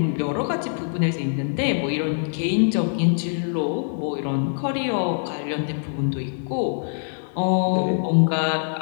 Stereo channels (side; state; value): right; silent; digital silence